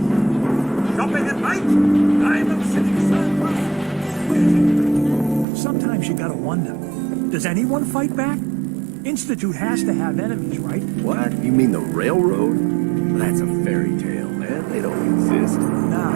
Shopping at night? Diamond City Surplus. Sometimes you gotta wonder, does anyone fight back? Institute has to have enemies, right? What? You mean the railroad? That's a fairy tale, man. They don't exist.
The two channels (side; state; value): left; drops out; at 5.5 s